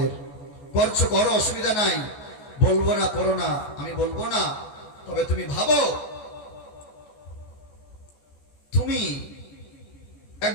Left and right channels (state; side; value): late; right; 14 ms